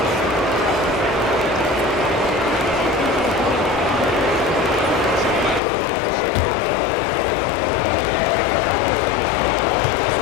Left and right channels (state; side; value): drops out; right; at 5.6 s